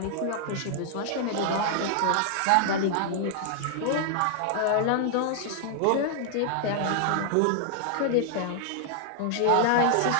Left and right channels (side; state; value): both; different; correlation -0.01